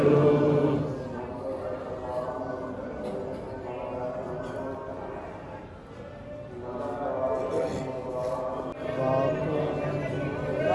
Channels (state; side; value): identical; both; correlation 1.00